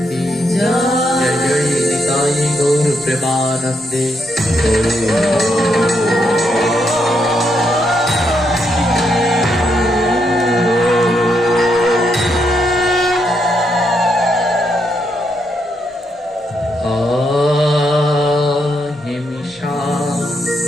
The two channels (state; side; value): normal; both; correlation 0.78